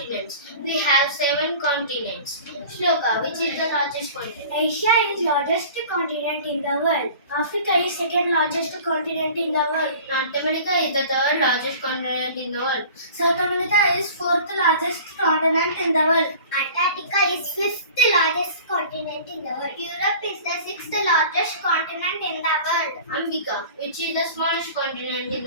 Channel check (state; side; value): inverted; both; correlation -0.43